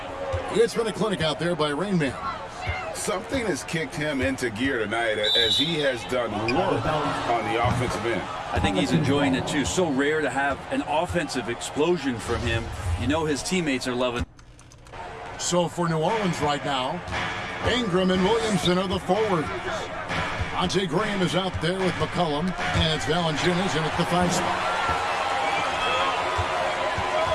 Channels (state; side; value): identical; both; correlation 1.00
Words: It's been a clinic out there by Rain Man. Something has kicked him into gear tonight as he has done work on the offensive end. I think he's enjoying it too. So rare to have an offensive explosion from him. You know his teammates are loving. So for New Orleans right now, Ingram and Williamson are the forwards. Ante Graham is out there with McCollum, and it's Valanciunas in at the 5 spot.